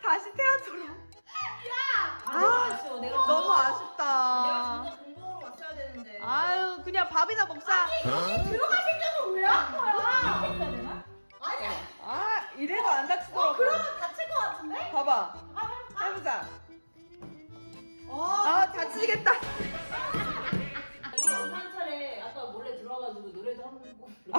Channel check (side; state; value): both; inverted; correlation -1.00